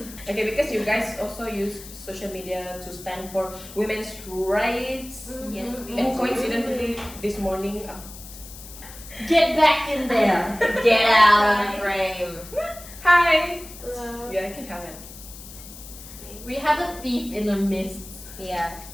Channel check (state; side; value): noise; left; hiss, 16 dB below the sound